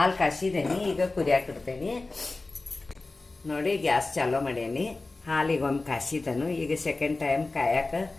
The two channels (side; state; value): right; quieter; 3.3 dB